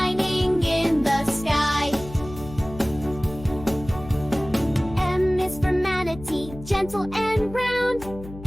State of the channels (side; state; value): left; noise; hum, 14 dB below the sound